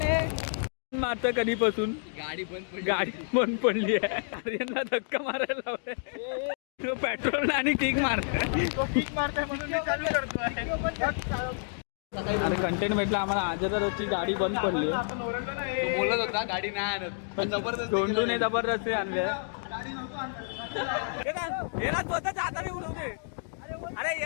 मारतं कधीपासून गाडी बंद पडली आहे. आर्यनला धक्का मारायला लावलाय. तो पेट्रोल आणि किक मारतोय म्हणून मी चालू करतोय. अरे कंटेंट भेटला आम्हाला. आजची गाडी बंद पडली. बोलत होता गाडी नाही आणत पण जबरदस्त दोंडूने जबरदस्ती आणले. स्वतःच्या हाताने उडवते. अरे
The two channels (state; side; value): silent; right; digital silence